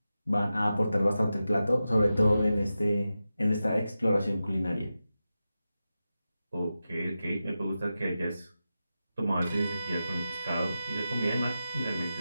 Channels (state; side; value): inverted; both; correlation -0.92